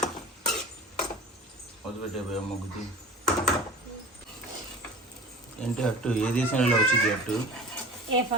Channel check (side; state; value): both; normal; correlation 0.38